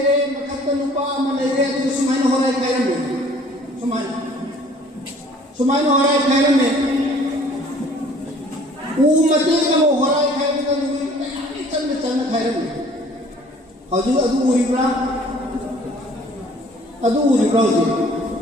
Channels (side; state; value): both; normal; correlation 0.54